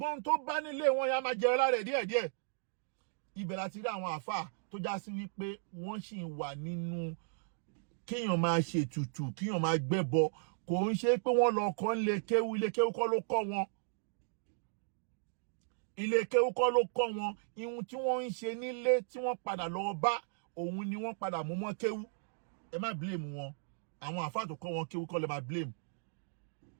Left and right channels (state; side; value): silent; left; digital silence